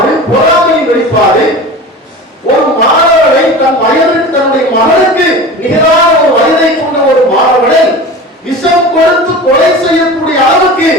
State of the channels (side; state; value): both; normal; correlation 0.34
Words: பொறாமையின் வெளிப்பாடு, ஒரு மாணவனை தன் வயதுக்கு தன்னுடைய மகனுக்கு நிகரான ஒரு வயதை கொண்ட ஒரு மாணவனை விஷம் கொடுத்து கொலை செய்யக்கூடிய அளவுக்கு